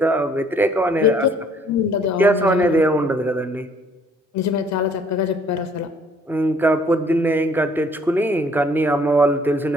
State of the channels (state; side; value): normal; both; correlation 0.61